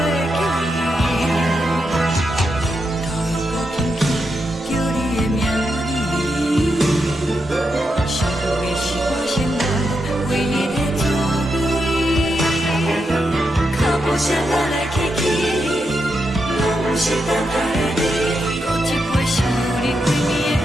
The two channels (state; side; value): normal; both; correlation 0.84